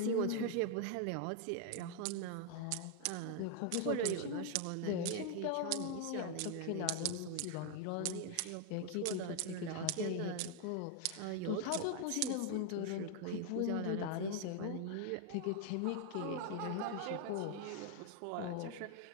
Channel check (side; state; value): both; different; correlation 0.00